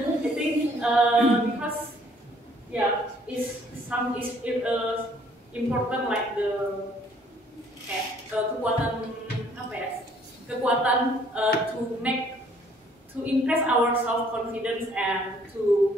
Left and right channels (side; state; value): both; normal; correlation 0.61